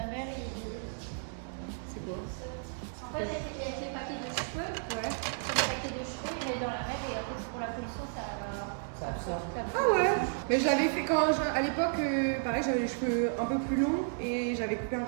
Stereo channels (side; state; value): left; silent; digital silence